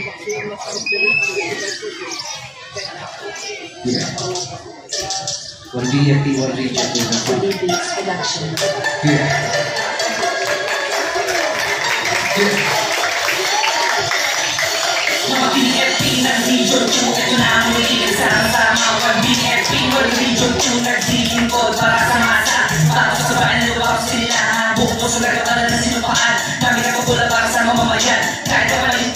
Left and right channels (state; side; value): identical; both; correlation 1.00